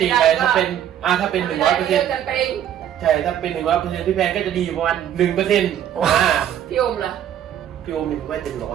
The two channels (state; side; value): quieter; left; 10.4 dB